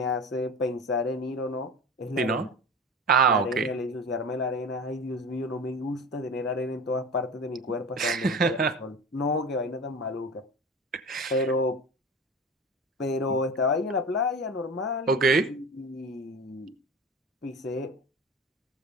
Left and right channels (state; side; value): normal; both; correlation 0.32